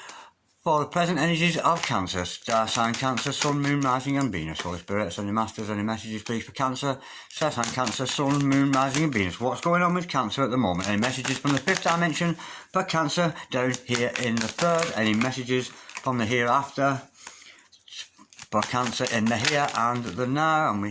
for the present energies of Cancer? Star sign Cancer, Sun, Moon, Rising and Venus. Holy Spirit, Ascending Masters, any messages please for Cancer? Star sign Cancer, Sun, Moon, Rising and Venus. What's going on with Cancer at the moment? Any messages from the fifth dimension for Cancer down here in the third? Any messages from the hereafter for Cancer in the here and the now? And we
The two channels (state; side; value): identical; both; correlation 1.00